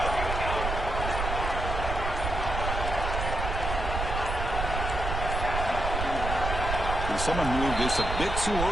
And someone moved this a bit too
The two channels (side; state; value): right; noise; rumble, 3 dB below the sound